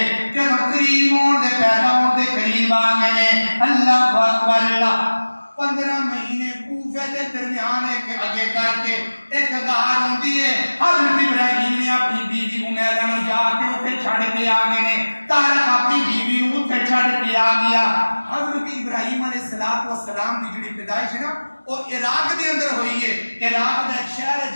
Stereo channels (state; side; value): inverted; both; correlation -1.00